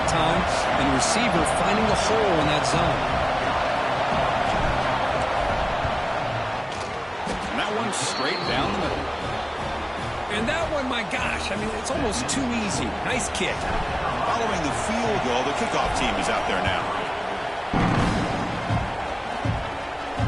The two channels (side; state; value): both; identical; correlation 1.00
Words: time and the receiver finding the hole in that zone. And that one straight down the middle. And that one, my gosh, I mean, it's almost too easy. Nice kick. Following the field goal, the kickoff team is out there now.